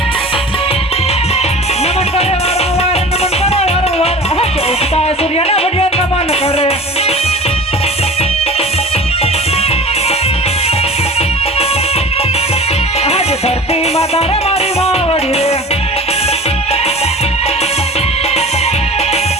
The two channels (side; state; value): both; normal; correlation 0.37